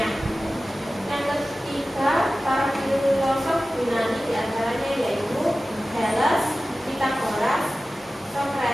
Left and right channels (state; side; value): normal; both; correlation 0.95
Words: Yang ketiga, para filosof Yunani diantaranya yaitu Thales, Pythagoras,